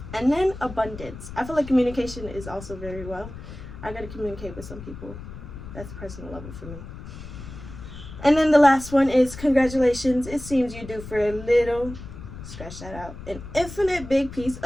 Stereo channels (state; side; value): noise; left; rumble, 12 dB below the sound